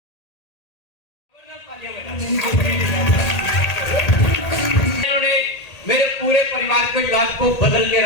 इन्होंने मेरे पूरे परिवार के इलाज को बदल के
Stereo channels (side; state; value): right; late; 1.8 ms